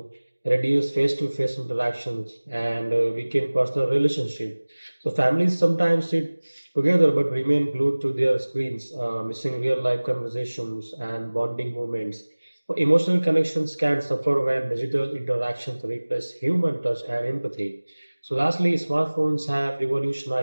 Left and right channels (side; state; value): both; inverted; correlation -1.00